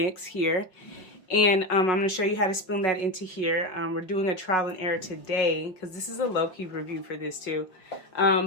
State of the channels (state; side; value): late; right; 5.4 ms